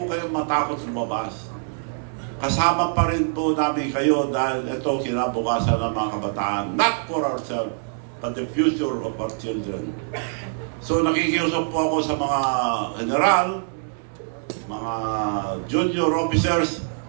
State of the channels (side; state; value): left; silent; digital silence